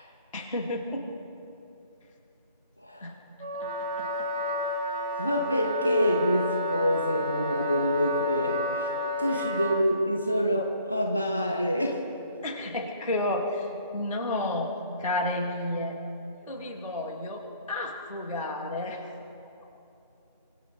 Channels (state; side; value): inverted; both; correlation -0.59